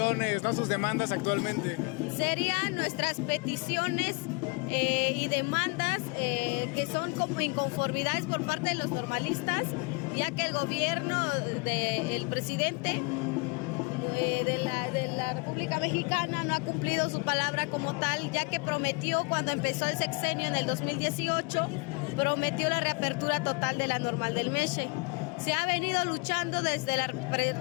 ¿no? Sus demandas actualmente? Serían nuestras peticiones y demandas que son como inconformidades por parte de los normalistas, ya que el gobierno del presidente de la República Mexicana no ha cumplido su palabra como tal, ya que prometió cuando empezó el sexenio en el 2018, prometió la reapertura total de la Normal del Mexe. Se ha venido luchando desde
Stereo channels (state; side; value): quieter; right; 30.7 dB